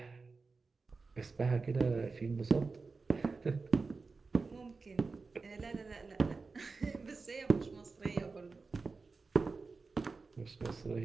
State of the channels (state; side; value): quieter; left; 4.2 dB